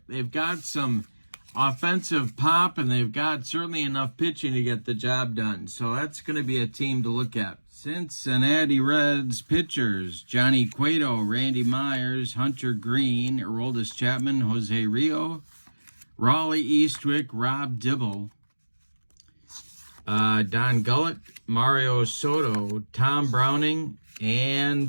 They've got some offensive pop, and they've got certainly enough pitching to get the job done. So that's going to be a team to look at. Cincinnati Reds pitchers: Johnny Cueto, Randy Myers, Hunter Green, Aroldis Chapman, Jose Rio, Raleigh Eastwick, Rob Dibble, Don Gullett, Mario Soto, Tom Browning,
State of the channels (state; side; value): inverted; both; correlation -1.00